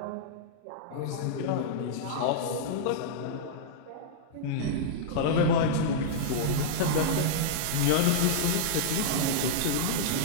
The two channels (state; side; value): different; both; correlation -0.02